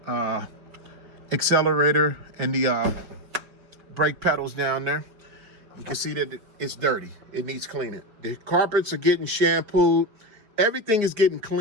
accelerator and the brake pedals down there. You can see that it's dirty. It needs cleaning. The carpets are getting shampooed. Everything is getting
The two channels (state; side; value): late; left; 5.5 ms